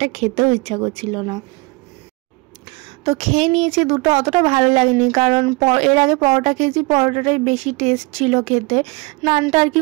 খেতেও ইচ্ছা করছিল না, তো খেয়ে নিয়েছি দুটো। অতটা ভালো লাগেনি, কারণ এর আগে পরোটা খেয়েছি, পরোটাটাই বেশি টেস্ট ছিল খেতে, নানটা আর কি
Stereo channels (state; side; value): quieter; left; 25.9 dB